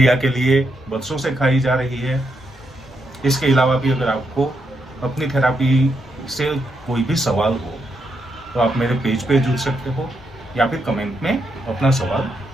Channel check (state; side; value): normal; both; correlation 0.81